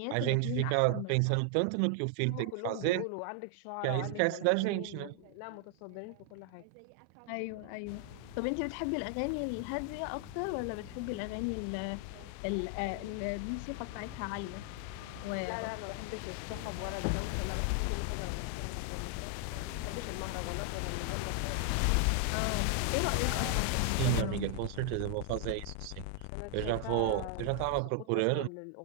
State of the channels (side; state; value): both; different; correlation 0.00